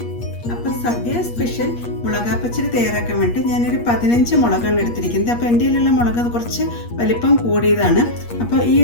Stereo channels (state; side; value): late; right; 8.4 ms